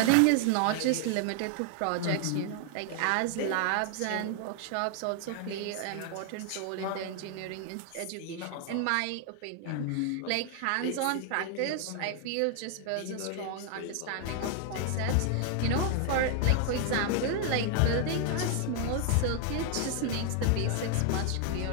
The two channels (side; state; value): both; different; correlation 0.00